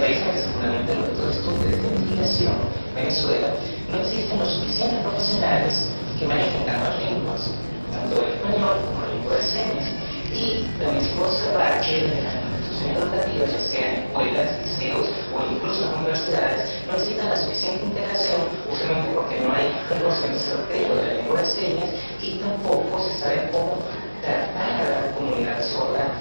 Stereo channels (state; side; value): inverted; both; correlation -1.00